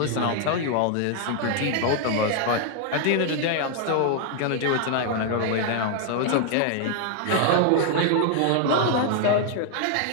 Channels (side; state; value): both; different; correlation 0.00